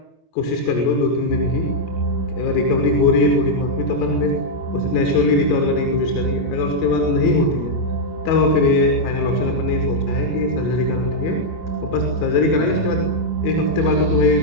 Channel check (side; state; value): right; late; 25 ms